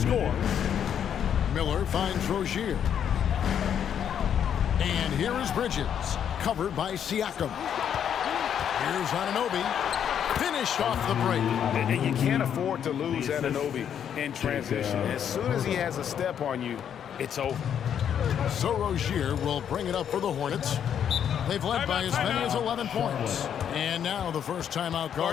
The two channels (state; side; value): quieter; right; 8.8 dB